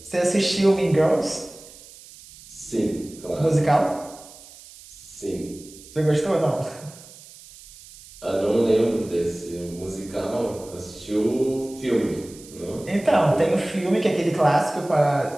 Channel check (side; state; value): right; noise; hiss, 20 dB below the sound